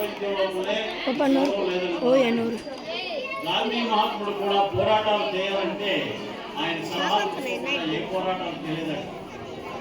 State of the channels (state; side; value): identical; both; correlation 1.00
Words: గాంధీ మహాత్ముడు కూడా పోరాటాలు చేయాలంటే ఆయన సలహాలు ఏ పోరాటాలు చేయలేదండి.